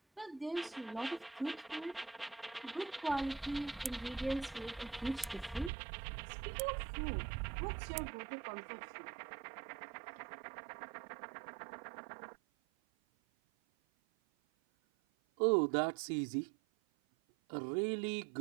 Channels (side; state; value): left; drops out; at 5.7 s